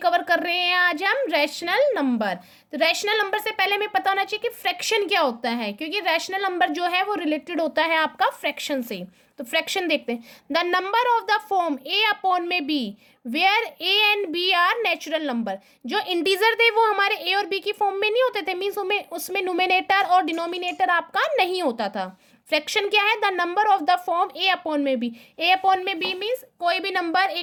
कवर कर रहे हैं आज हम रैशनल नंबर। तो रैशनल नंबर से पहले हमें पता होना चाहिए कि फ्रैक्शन क्या होता है, क्योंकि रैशनल नंबर जो है वो रिलेटेड होता है आपका फ्रैक्शन से। तो फ्रैक्शन देखते हैं। The number of the form A upon में B where A and B are natural number. जो इंटीजर थे वो हमारे ए और बी की फॉर्म में नहीं होते थे, मीन्स उसमें न्यूमेरेटर और डिनोमिनेटर आपका नहीं होता था। फ्रैक्शन क्या है? The number of the form A upon में बी। ए अपॉन में बी मीन्स कोई भी नंबर,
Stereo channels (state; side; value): identical; both; correlation 1.00